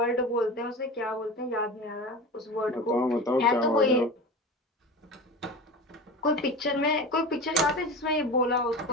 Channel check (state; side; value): normal; both; correlation 0.31